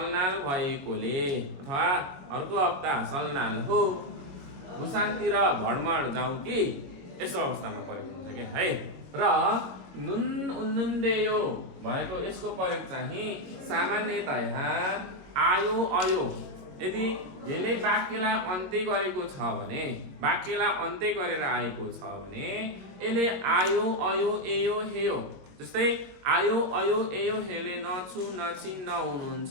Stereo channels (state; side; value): late; left; 22 ms